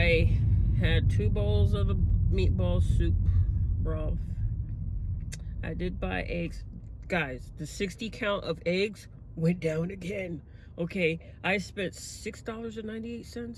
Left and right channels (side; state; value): both; identical; correlation 1.00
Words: had 2 bowls of the meatball soup broth. I did buy eggs. Guys, the 60 count of eggs went down again. Okay, I spent